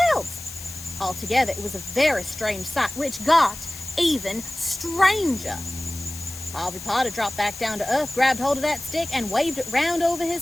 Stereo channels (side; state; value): left; noise; hiss, 13 dB below the sound